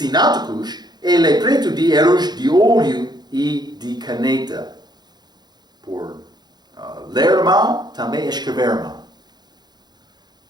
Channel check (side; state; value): left; late; 0.20 ms